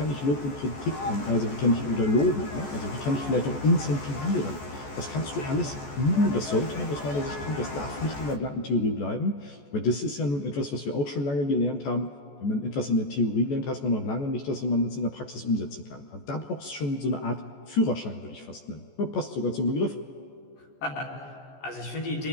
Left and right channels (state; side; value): late; right; 14 ms